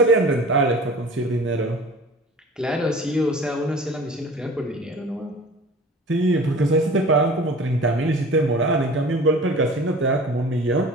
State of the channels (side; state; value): both; normal; correlation 0.42